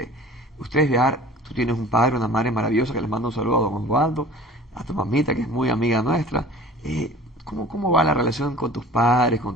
ustedes viajar, tú tienes un padre, una madre maravillosa, que les mando un saludo a don Osvaldo, a tu mamita, que es muy amiga nuestra. ¿Cómo va la relación con tus padres, con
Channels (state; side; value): normal; both; correlation 0.44